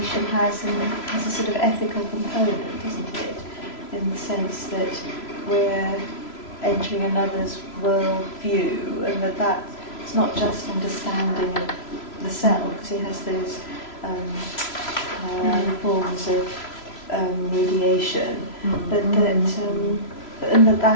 has a sort of ethical component, isn't it? In the sense that we're entering another's world view, and that's not just understanding of the self, because he has those forms of mediation, but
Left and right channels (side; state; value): right; late; 3.0 ms